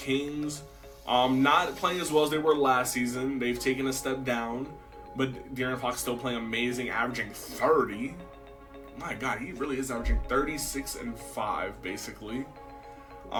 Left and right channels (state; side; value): identical; both; correlation 1.00